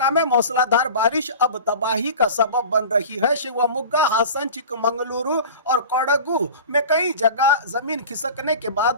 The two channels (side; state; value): both; inverted; correlation -0.37